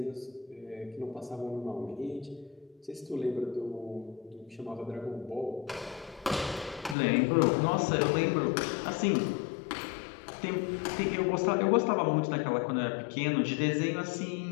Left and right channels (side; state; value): right; drops out; at 7.0 s